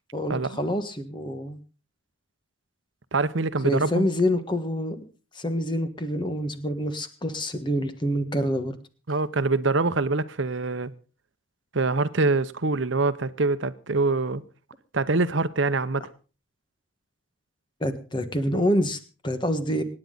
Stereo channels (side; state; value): both; normal; correlation 0.37